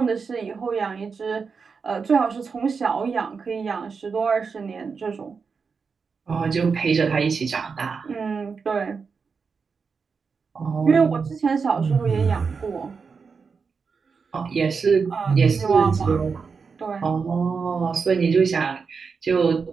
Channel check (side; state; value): left; quieter; 5.3 dB